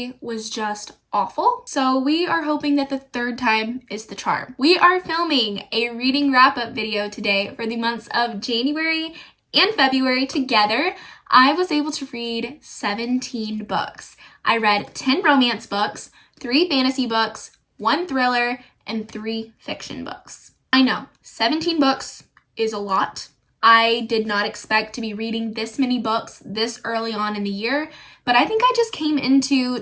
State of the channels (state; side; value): identical; both; correlation 1.00